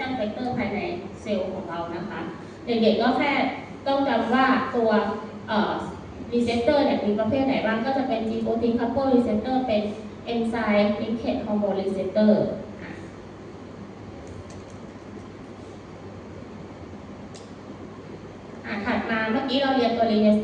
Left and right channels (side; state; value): both; identical; correlation 1.00